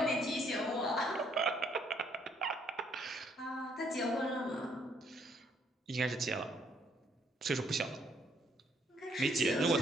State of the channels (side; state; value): both; normal; correlation 0.68